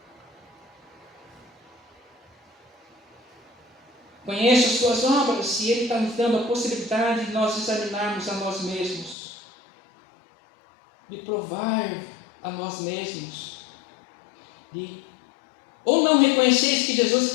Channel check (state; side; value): drops out; right; at 9.2 s